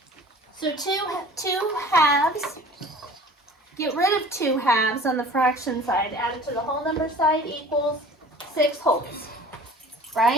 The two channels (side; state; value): both; normal; correlation 0.45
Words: So two halves, get rid of 2 halves on the fraction side, add it to the whole number side equals 6 wholes,